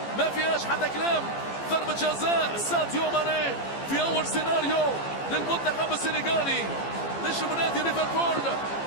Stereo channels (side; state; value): right; late; 15 ms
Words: ما فيهاش حتى كلام. ضربة جزاء ساديو ماني في أول سيناريو للمنتخب السنغالي. نجم نادي ليفربول